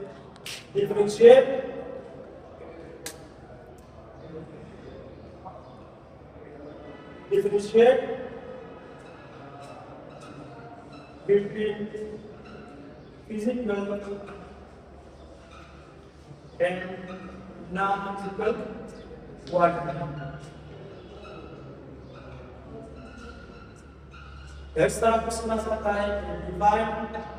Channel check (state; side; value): identical; both; correlation 1.00